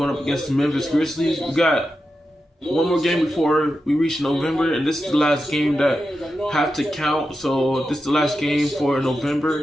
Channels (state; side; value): normal; both; correlation 0.89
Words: up against the Memphis Grizzlies. We got one more game before we reach November, and this is the last game that have to count. So this is the last game for